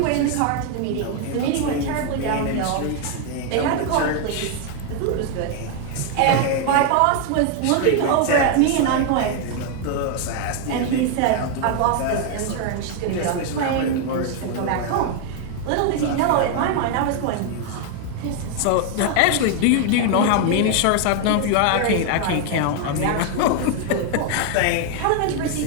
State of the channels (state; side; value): different; both; correlation 0.00